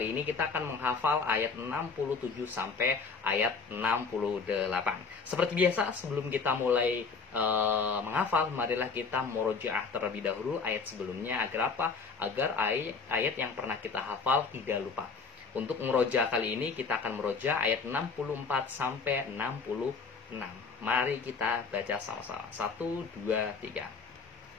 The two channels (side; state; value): right; quieter; 4.9 dB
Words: ini kita akan menghafal ayat 67 sampai ayat 68. Seperti biasa, sebelum kita mulai menghafal, marilah kita murojaah terlebih dahulu ayat sebelumnya agar apa? Agar ayat yang pernah kita hafal tidak lupa. Untuk murojaah kali ini kita akan murojaah ayat 64 sampai 66. Mari kita baca sama-sama. 1, 2, 3.